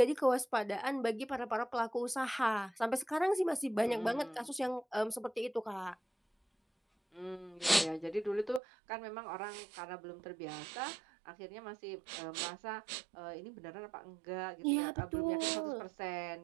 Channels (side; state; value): left; drops out; at 8.6 s